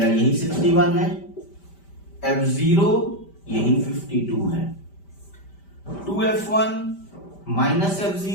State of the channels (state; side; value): late; right; 5.1 ms